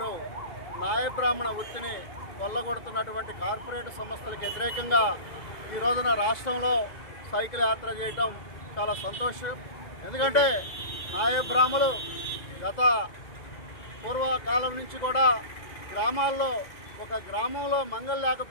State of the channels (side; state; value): right; late; 2.0 ms